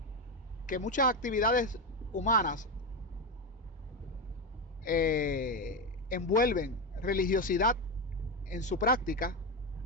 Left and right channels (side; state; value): both; normal; correlation 0.12